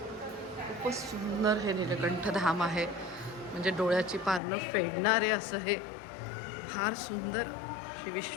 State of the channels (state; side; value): drops out; right; at 4.4 s